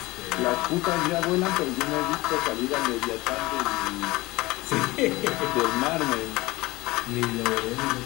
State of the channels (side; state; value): right; quieter; 20.8 dB